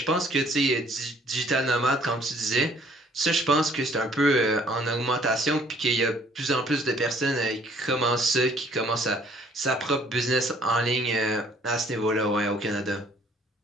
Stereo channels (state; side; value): normal; both; correlation 0.59